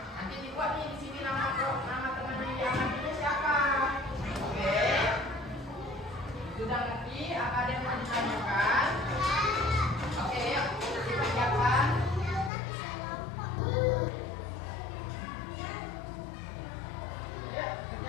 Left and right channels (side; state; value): right; drops out; at 12.5 s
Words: Nanti dibuat nih di sini nama teman yang diamatinya siapa. Oke. Sudah ngerti? Apa ada yang mau ditanyakan? Oke, yuk dipersiapkan.